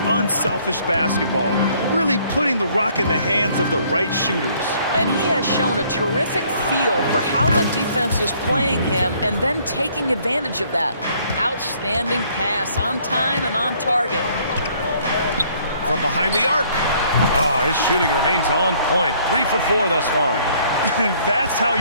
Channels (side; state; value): both; inverted; correlation -0.62